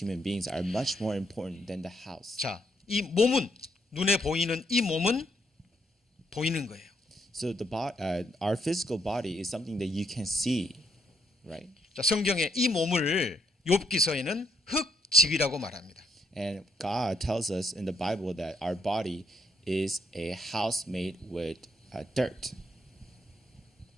human beings are much more important than the house. 자, 이 몸은 눈에 보이는 이 몸은 보이는 거예요. So our physical body is something that you can see, right? 자, 성경에 이 몸을 욥기서에는 흙집이라고 말합니다. And God tells us in the Bible that our body is a house made with dirt.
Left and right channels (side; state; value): both; normal; correlation 0.74